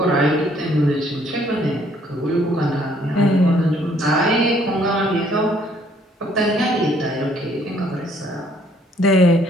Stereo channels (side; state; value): both; normal; correlation 0.64